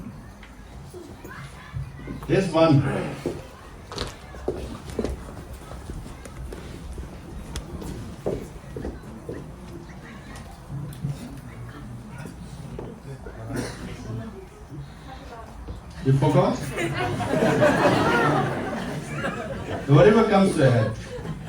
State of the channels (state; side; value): identical; both; correlation 1.00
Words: There's one. You forgot? Whatever comes to your head.